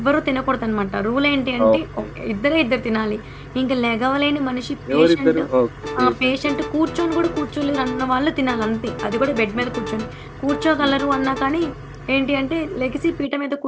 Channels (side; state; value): both; identical; correlation 1.00